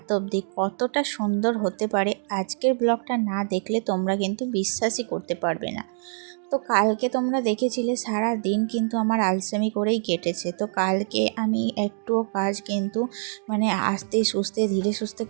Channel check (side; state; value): left; silent; digital silence